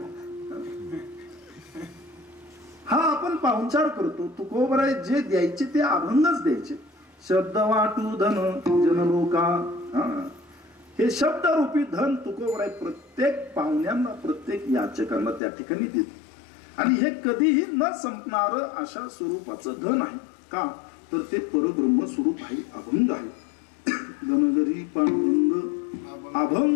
हा आपण पाहुणचार करतो. तुकोबराय जे द्यायचे ते अभंगच द्यायचे. शब्द वाटू धन जनलोका, हे शब्दरूपी धन तुकोबराय प्रत्येक पाहुण्यांना, प्रत्येक याचकांना त्या ठिकाणी देत. आणि हे कधीही न संपणार अशा स्वरूपाचं धन आहे. का तर ते परब्रह्म स्वरूप आहे, अभंग आहे. धनगरी पांडुरंग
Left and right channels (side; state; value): right; drops out; at 15.4 s